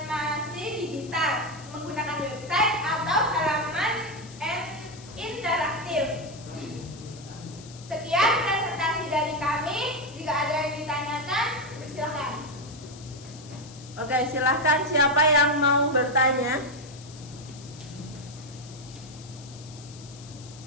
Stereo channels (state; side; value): noise; left; hiss, 19 dB below the sound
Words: digital menggunakan website atau halaman interaktif. Sekian presentasi dari kami. Jika ada yang ditanyakan, bersilakan. Oke, silahkan siapa yang mau bertanya?